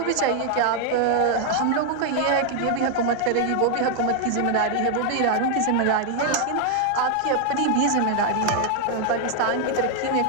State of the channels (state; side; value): different; both; correlation 0.00